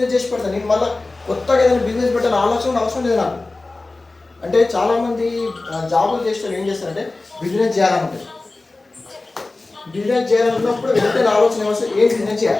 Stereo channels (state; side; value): quieter; right; 3.3 dB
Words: చేసి పెడతాను. నేను మళ్ళీ కొత్తగా ఏదైనా బిజినెస్ పెట్టాలని అవసరం లేదు నాకు. అంటే చాలామంది జాబులు చేసిన ఏం చేస్తారంటే బిజినెస్ చేయాలనుకుంటారు. బిజినెస్ చేయాలన్నప్పుడు వెంటనే ఆలోచన వస్తుంది ఏం బిజినెస్